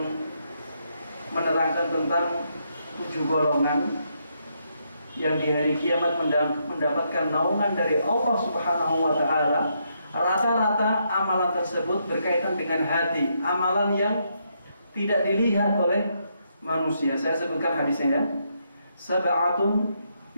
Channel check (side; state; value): both; inverted; correlation -0.77